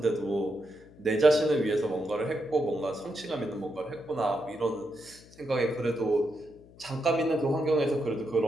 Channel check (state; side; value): noise; left; hum, 23 dB below the sound